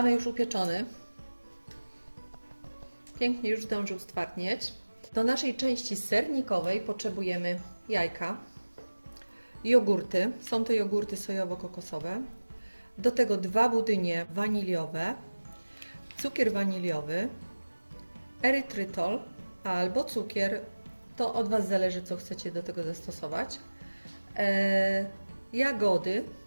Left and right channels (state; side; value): inverted; both; correlation -1.00